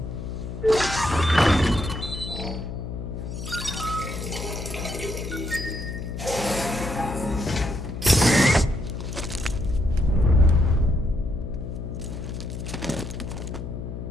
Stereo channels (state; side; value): noise; left; hum, 7 dB below the sound